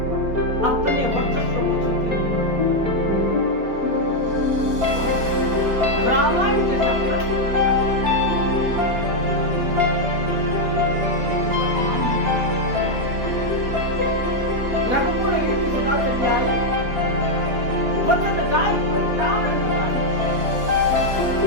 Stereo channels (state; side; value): late; left; 4.2 ms